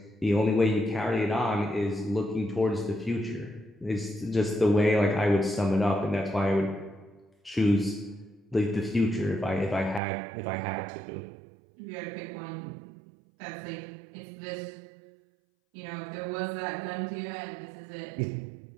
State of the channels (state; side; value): drops out; left; at 10.0 s